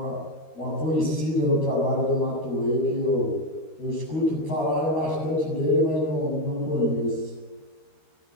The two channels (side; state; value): right; late; 13 ms